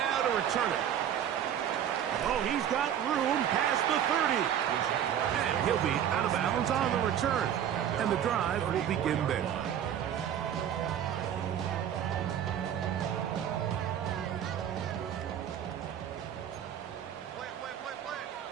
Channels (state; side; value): quieter; left; 9.8 dB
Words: to return it. Oh, he's got room past the 30. And he'll be out of bounds on the return. And the drive will begin there.